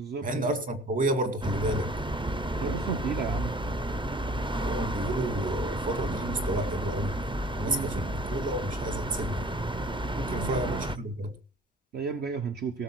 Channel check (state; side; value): normal; both; correlation 0.49